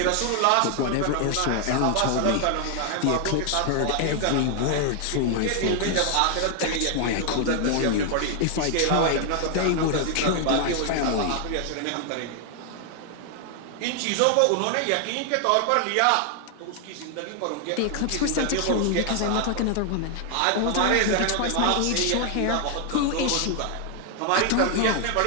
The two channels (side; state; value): both; different; correlation 0.00